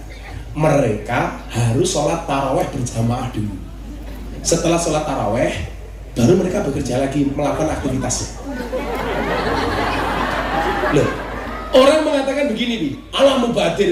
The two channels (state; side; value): identical; both; correlation 1.00